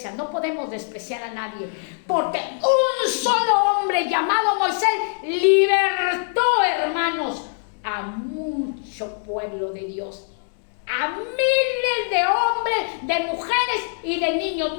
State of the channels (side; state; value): right; silent; 64 dB below the other